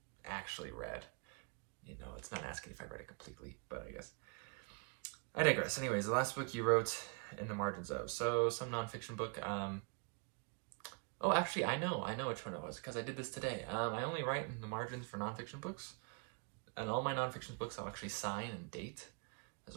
actually read. It's not asking if I read it completely, but I guess. I digress. Anyways, the last book you wrote in the margins of. So, some nonfiction book. Oh, actually, I know which one it was, because I did this today. I only write in the margins for nonfiction books, and all my nonfiction books I'll actually sign and date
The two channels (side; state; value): left; quieter; 36.3 dB